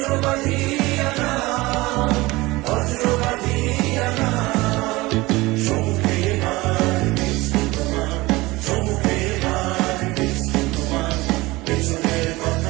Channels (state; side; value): quieter; left; 20.9 dB